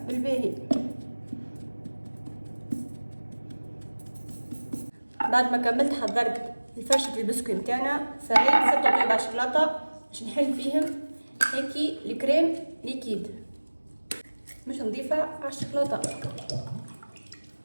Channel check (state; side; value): inverted; both; correlation -1.00